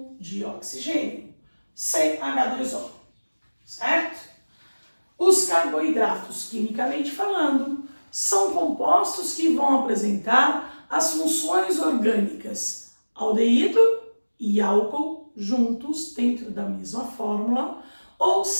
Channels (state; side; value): inverted; both; correlation -1.00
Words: de oxigênio, CH2O, certo? Os carboidratos, quimicamente falando, são compostos que vão apresentar as funções orgânicas aldeído e álcool juntos dentro da mesma fórmula, ou